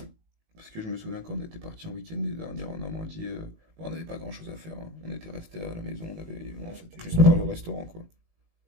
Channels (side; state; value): left; late; 19 ms